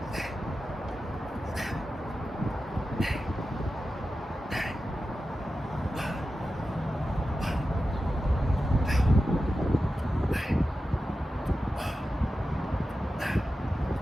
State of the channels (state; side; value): normal; both; correlation 0.92